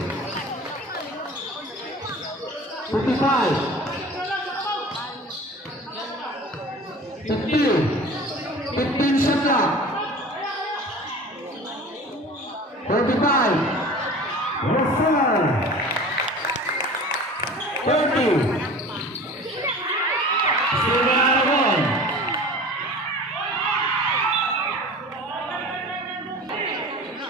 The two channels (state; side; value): normal; both; correlation 0.40